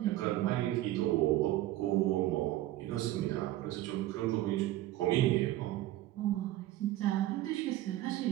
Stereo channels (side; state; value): left; quieter; 15.1 dB